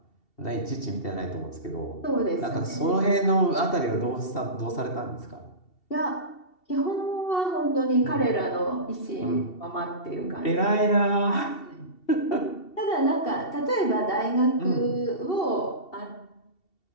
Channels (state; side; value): late; right; 2.7 ms